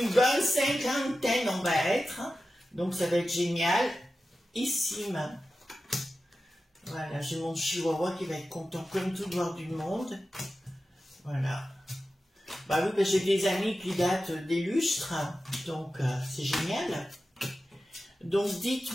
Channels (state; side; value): normal; both; correlation 0.93